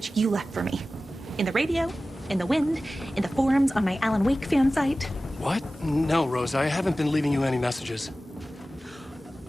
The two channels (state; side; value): normal; both; correlation 0.96